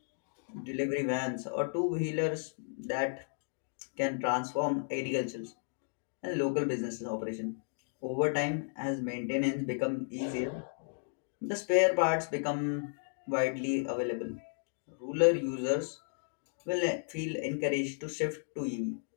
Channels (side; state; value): right; silent; digital silence